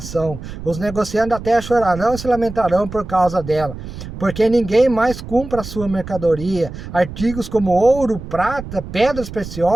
Os negociantes da terra chorarão e se lamentarão por causa dela, porque ninguém mais compra a sua mercadoria. Artigos como ouro, prata, pedras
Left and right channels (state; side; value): noise; right; rumble, 11 dB below the sound